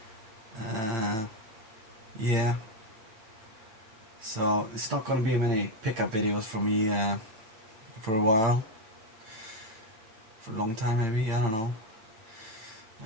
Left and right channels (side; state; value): left; late; 8.9 ms